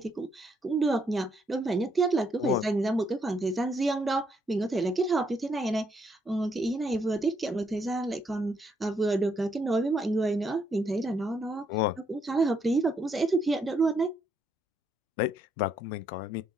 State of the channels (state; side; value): normal; both; correlation 0.74